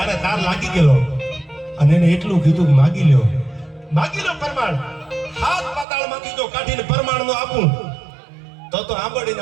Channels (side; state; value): left; drops out; at 5.9 s